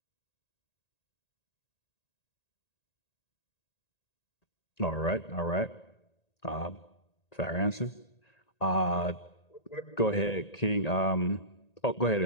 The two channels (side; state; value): right; late; 1.9 ms